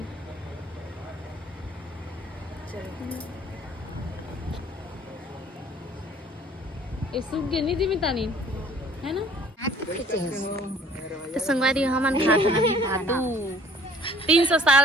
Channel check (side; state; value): both; normal; correlation 0.55